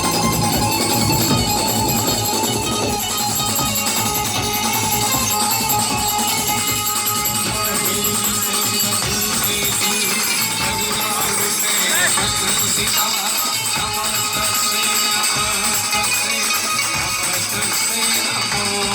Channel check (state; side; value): identical; both; correlation 1.00